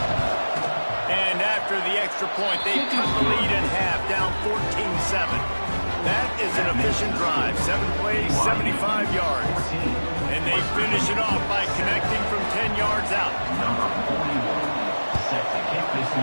And after the extra point, they cut the lead in half, down 14-7. That is an efficient drive. 7 plays, 75 yards. And they finish it off by connecting from 10 yards out. Number 41, set to kick this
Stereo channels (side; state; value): both; inverted; correlation -1.00